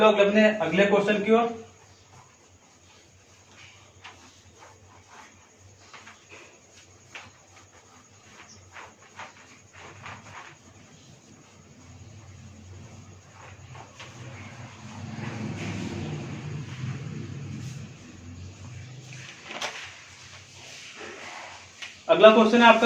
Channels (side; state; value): both; identical; correlation 1.00